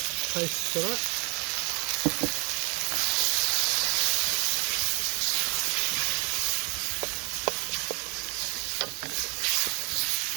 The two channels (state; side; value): quieter; left; 32.0 dB